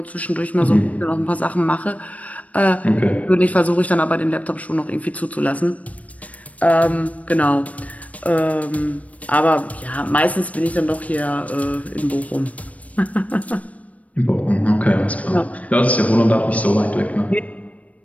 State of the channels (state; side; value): late; right; 0.067 ms